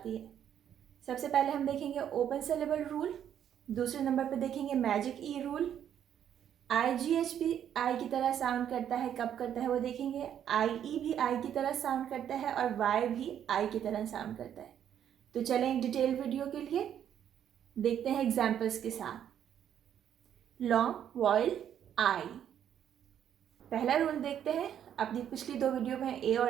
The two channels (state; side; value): quieter; left; 9.6 dB